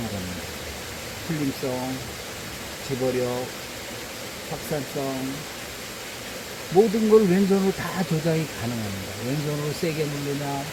합니다. 풀림성, 집어력, 확산성, 모든 걸 왼손으로 다 조작이 가능합니다. 왼손으로 세게 누르냐,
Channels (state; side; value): identical; both; correlation 1.00